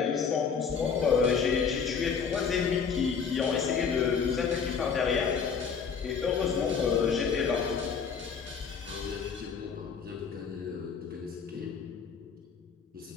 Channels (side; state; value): right; quieter; 6.2 dB